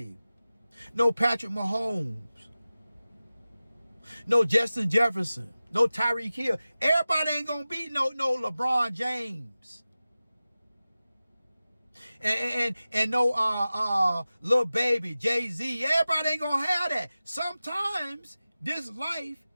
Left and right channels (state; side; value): inverted; both; correlation -0.96